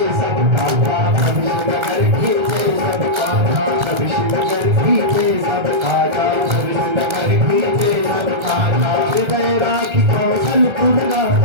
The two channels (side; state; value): left; late; 1.3 ms